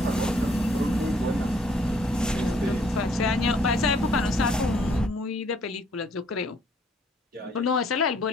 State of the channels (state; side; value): normal; both; correlation 0.63